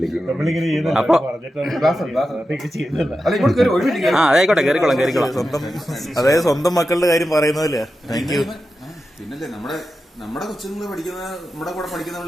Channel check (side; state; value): both; normal; correlation 0.91